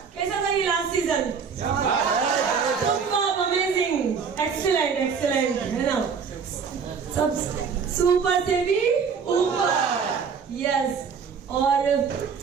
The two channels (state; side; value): quieter; left; 6.1 dB